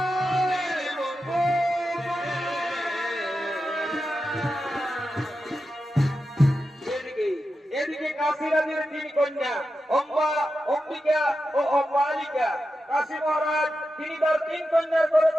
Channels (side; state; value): both; normal; correlation 0.90